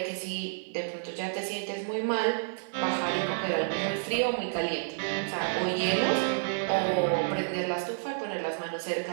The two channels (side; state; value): left; silent; digital silence